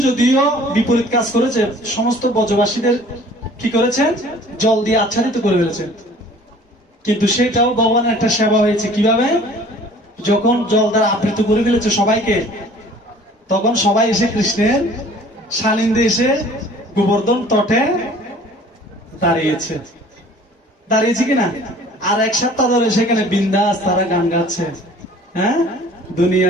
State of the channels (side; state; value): both; normal; correlation 0.50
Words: যদিও বিপরীত কাজ করেছে, সমস্ত ব্রজবাসীদের কি করেছেন? জল দিয়ে আচ্ছাদিত করে ফেলেছেন। কিন্তু সেটাও ভগবানের একটা সেবা হয়েছে। কিভাবে? যখন জল দ্বারা আবৃত করে ফেলেছে সবাইকে, তখন সবাই এসে কৃষ্ণের সানিধ্যে এসে গোবর্ধন তটে দাঁড়িয়েছে। দাঁড়িয়েছে কিনা? আর এক সপ্তাহ ধরে সেখানে বিন্দাস তারা গান গাচ্ছে, হ্যাঁ, দুনিয়া